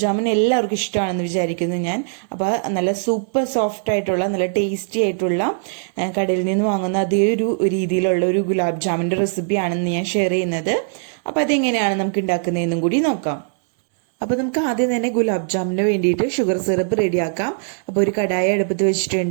ജാമുൻ എല്ലാവർക്കും ഇഷ്ടമാണെന്ന് വിചാരിക്കുന്നു ഞാൻ. അപ്പോൾ നല്ല സൂപ്പർ സോഫ്റ്റ് ആയിട്ടുള്ള നല്ല ടേസ്റ്റി ആയിട്ടുള്ള കടയിൽ നിന്ന് വാങ്ങുന്ന അതേ ഒരു രീതിയിലുള്ള ഒരു ഗുലാബ് ജാമുൻ്റെ റെസിപ്പിയാണെന്ന് ഞാൻ ഷെയർ ചെയ്യുന്നത്. അപ്പോൾ അതെങ്ങനെയാണ് നമുക്ക് ഉണ്ടാക്കുന്നതെന്നും കൂടി നോക്കാം. അപ്പോൾ നമുക്ക് ആദ്യം തന്നെ ഗുലാബ് ജാമുന് വേണ്ടിയിട്ട് ഷുഗർ സിറപ്പ് റെഡിയാക്കാം. അപ്പോൾ ഒരു കടായി അടുപ്പത്ത്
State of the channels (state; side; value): silent; left; digital silence